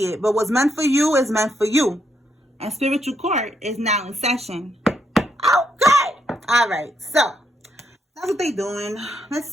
it. But what's meant for you is meant for you. And spiritual court is now in session. Okay. All right. So that's what they're doing. Let's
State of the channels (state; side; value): normal; both; correlation 0.77